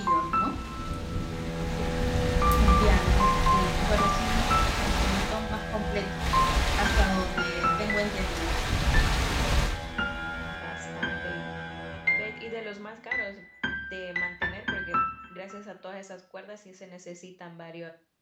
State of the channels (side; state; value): both; identical; correlation 1.00